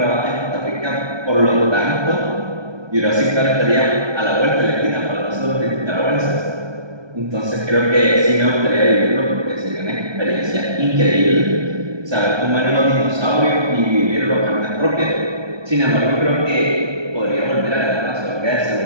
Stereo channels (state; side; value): late; left; 1.2 ms